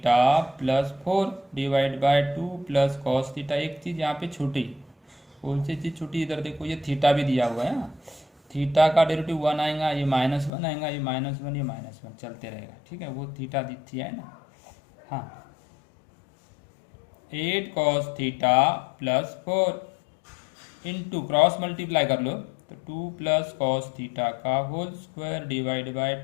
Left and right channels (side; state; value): right; drops out; at 10.5 s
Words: plus 4 divide by 2 plus cos theta. एक चीज़ यहाँ पे छूटी, कौन सी चीज़ छूटी? इधर देखो ये थीटा भी दिया हुआ है ना, थीटा का डेरिवेटिव 1 आएगा, ये -1 आएगा, ये -1 ये -1 चलते रहेगा। ठीक है, वो थीटा दिखती है ना। हाँ 8 cos theta plus 4 into cross multiply कर लो तो 2 प्लस cos थीटा का whole square divide by